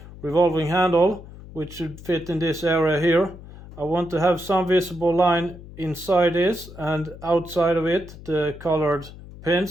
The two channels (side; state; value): left; noise; hum, 16 dB below the sound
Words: revolving handle, which should fit in this area here. I want to have some visible line inside this, and outside of it the colored